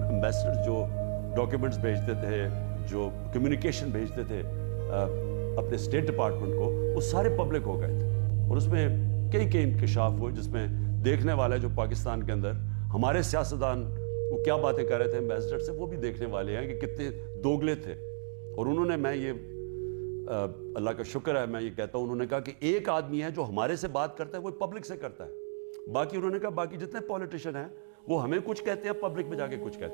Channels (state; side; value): silent; left; digital silence